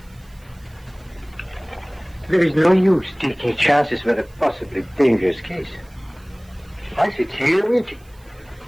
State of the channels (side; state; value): right; noise; hiss, 30 dB below the sound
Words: There is no use taking chances with a possibly dangerous case. I sit here waiting.